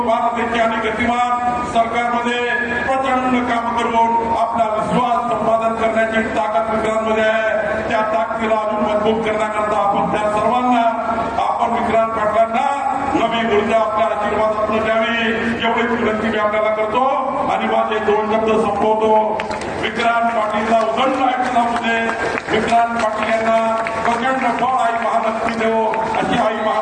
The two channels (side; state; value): both; identical; correlation 1.00